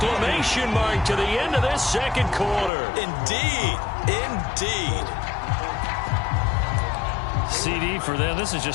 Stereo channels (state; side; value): drops out; right; at 2.7 s